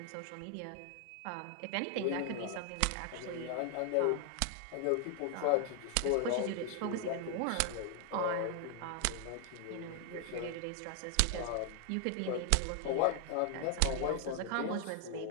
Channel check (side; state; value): both; different; correlation 0.00